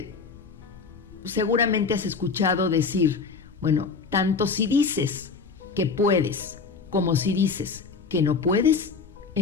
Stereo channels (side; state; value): right; quieter; 5.0 dB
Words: seguramente has escuchado decir, bueno, tanto si dices que puedes como si dices que no puedes,